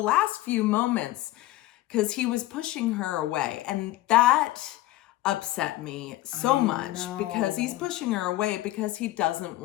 few moments, because he was pushing her away. And that upset me so much because he's pushing her away because he doesn't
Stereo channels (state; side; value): quieter; right; 16.3 dB